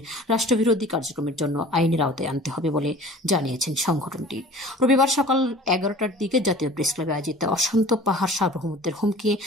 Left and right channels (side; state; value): both; normal; correlation 0.44